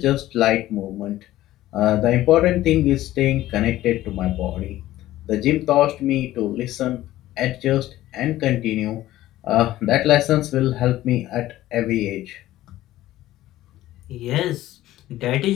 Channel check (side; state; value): right; quieter; 15.0 dB